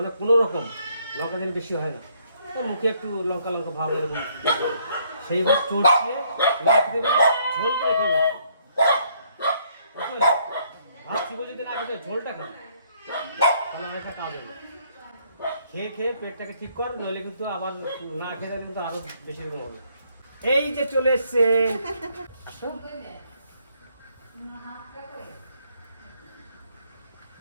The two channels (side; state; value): both; inverted; correlation -0.68